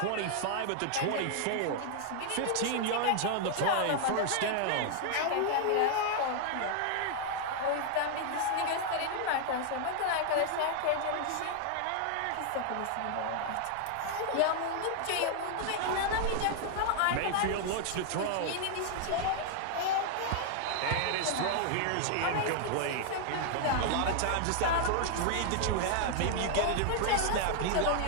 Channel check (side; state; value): both; different; correlation 0.00